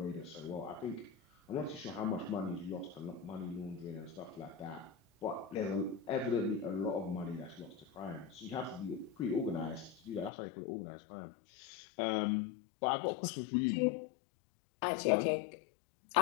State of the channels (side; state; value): right; drops out; at 10.3 s